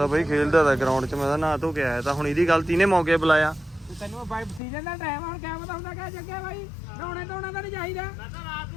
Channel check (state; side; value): drops out; right; at 4.6 s